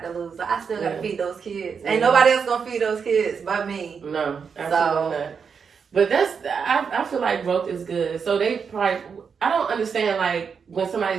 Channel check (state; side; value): quieter; left; 6.2 dB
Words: to lose. So I still got to Yeah. feed those kids. Yeah. Ain't nobody else going to feed those kids but me. No, absolutely not. But I feel like growth is good. So they probably, I don't understand like when